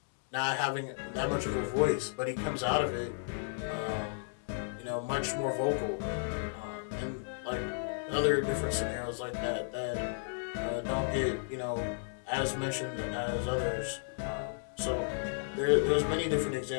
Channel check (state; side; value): silent; right; digital silence